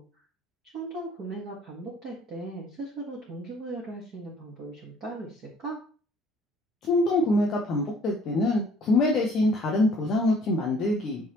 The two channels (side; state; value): both; normal; correlation 0.57